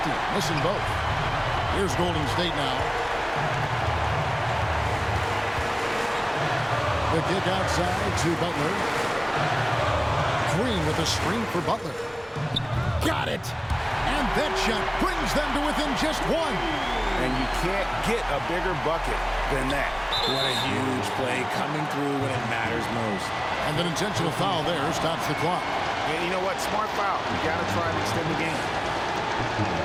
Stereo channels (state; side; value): identical; both; correlation 1.00